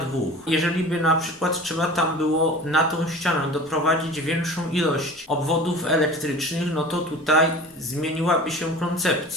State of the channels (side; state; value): both; normal; correlation 0.39